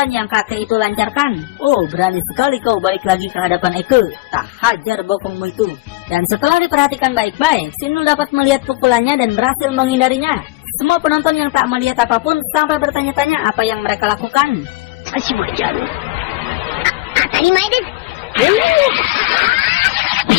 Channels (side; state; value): right; quieter; 19.6 dB